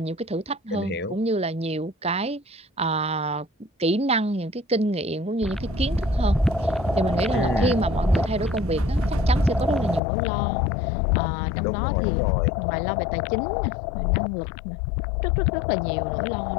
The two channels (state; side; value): drops out; right; at 10.0 s